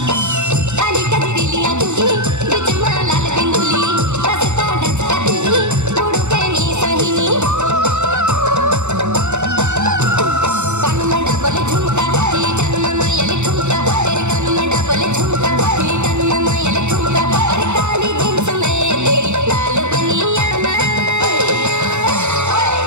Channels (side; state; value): left; late; 0.83 ms